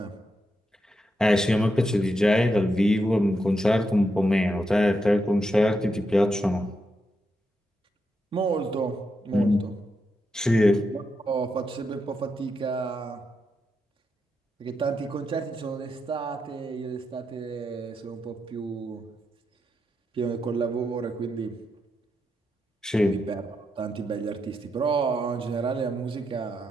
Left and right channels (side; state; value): both; normal; correlation 0.84